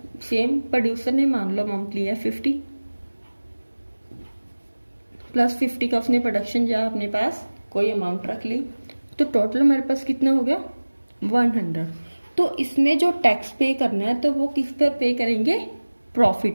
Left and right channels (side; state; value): both; inverted; correlation -1.00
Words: सेम प्रोड्यूसर ने मान लो अमाउंट लिया 50 प्लस 50 का उसने प्रोडक्शन या अपने पास कोई अमाउंट रख ली, तो टोटल हमारे पास कितना हो गया 100। तो इसमें जो टैक्स पे करना है तो वो किस पर पे करेंगे, प्रॉफिट